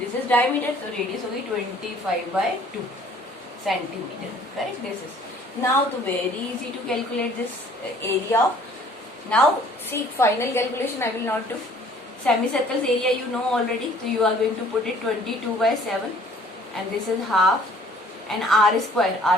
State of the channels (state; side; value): normal; both; correlation 0.56